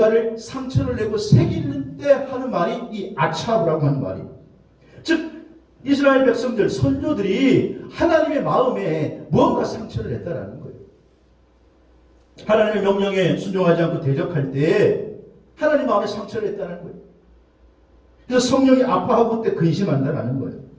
상처를 내고 새기는 때 하는 말이 이 아차브라고 하는 말이, 즉 이스라엘 백성들, 선조들이 하나님의 마음에 뭔가 상처를 냈다라는 거예요. 하나님의 명령에 순종하지 않고 대적할 때 하나님 마음에 상처를 냈다는 거예요. 그래서 성령이 아파하고 그때 근심한다라는 거예요.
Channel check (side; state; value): both; identical; correlation 1.00